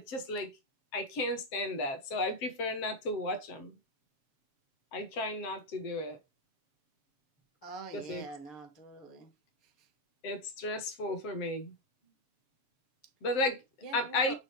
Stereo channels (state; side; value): late; right; 7.6 ms